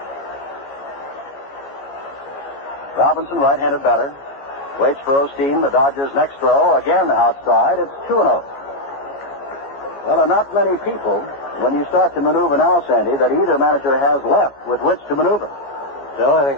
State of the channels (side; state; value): right; late; 14 ms